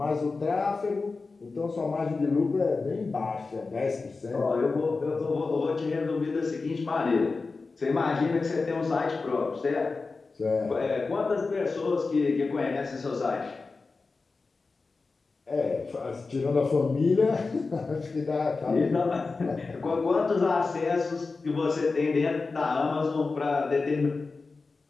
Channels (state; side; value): quieter; right; 4.1 dB